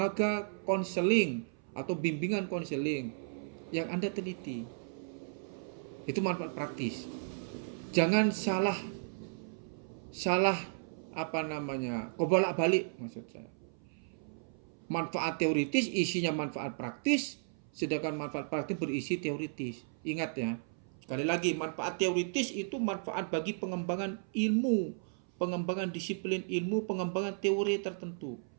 konseling atau bimbingan konseling yang Anda teliti. Itu manfaat praktis. Jangan salah kebolak-balik maksud saya. Manfaat teoritis isinya manfaat praktis, sedangkan manfaat praktis berisi teoritis. Ingat ya. Sekali lagi, manfaat teoritis itu manfaat bagi pengembangan ilmu, pengembangan disiplin ilmu, pengembangan teori tertentu.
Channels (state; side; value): silent; left; 55 dB below the other